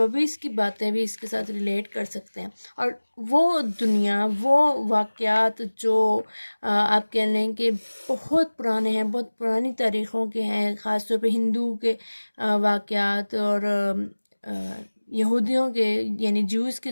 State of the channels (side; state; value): both; inverted; correlation -1.00